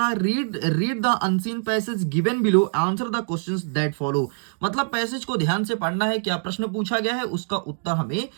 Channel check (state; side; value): silent; left; digital silence